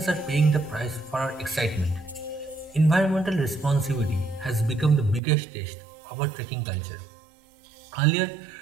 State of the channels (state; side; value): drops out; left; at 5.2 s